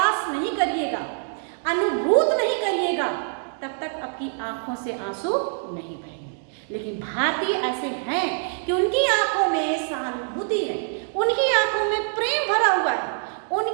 नहीं करिएगा, अनुभूत नहीं करिएगा, तब तक आपकी आंखों से आंसू नहीं बहेंगे। लेकिन भारतीय ऐसे हैं कि उनकी आंखों में सहानुभूति है, उनकी आंखों में प्रेम भरा हुआ है,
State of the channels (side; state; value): left; silent; 62 dB below the other